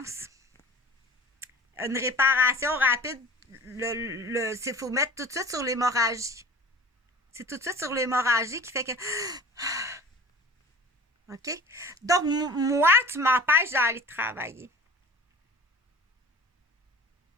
Une réparation rapide. Il faut mettre tout de suite sur l'hémorragie. C'est tout de suite sur l'hémorragie qui fait que... OK? Donc, moi, tu m'empêches d'aller travailler.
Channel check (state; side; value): normal; both; correlation 0.42